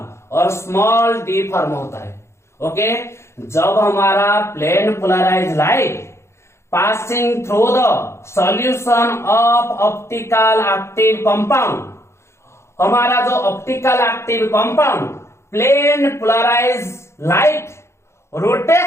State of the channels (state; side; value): late; right; 0.13 ms